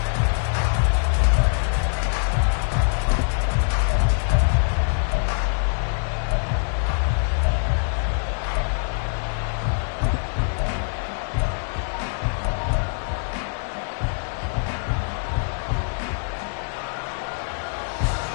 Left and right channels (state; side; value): silent; right; digital silence